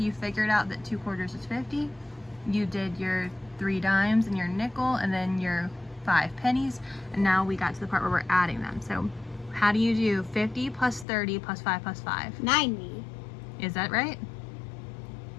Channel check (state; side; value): drops out; right; at 11.1 s